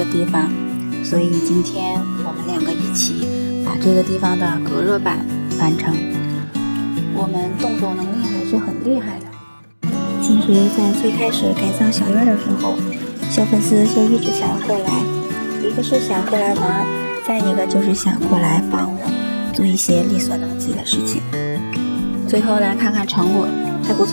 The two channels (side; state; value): both; inverted; correlation -1.00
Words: 地方，所以今天我们2个一起把这个地方的隔热板完成。我们动手能力还是很厉害的。其实在最开始改造小院的时候，小粉丝就一直想要过来，一个是想过来玩，再一个就是想过来帮我做一些力所能及的事情。最后来看看成果，还不